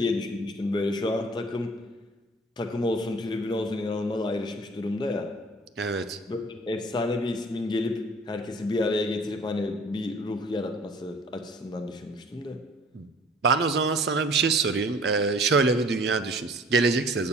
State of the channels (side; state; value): both; normal; correlation 0.51